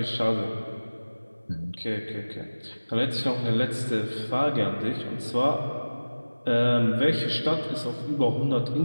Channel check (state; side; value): inverted; both; correlation -1.00